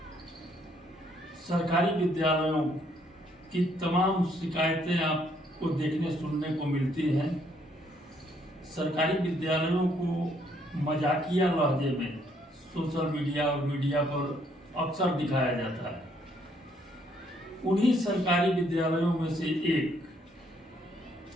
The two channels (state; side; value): normal; both; correlation 0.69